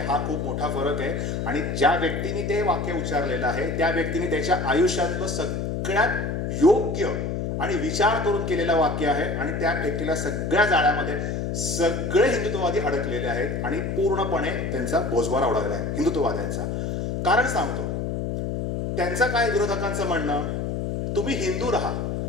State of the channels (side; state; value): left; noise; hum, 2 dB below the sound